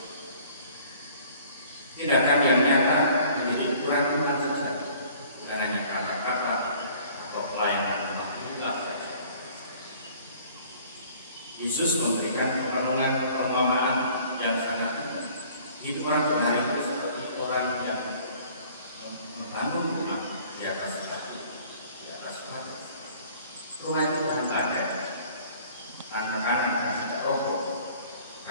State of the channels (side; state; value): both; inverted; correlation -0.53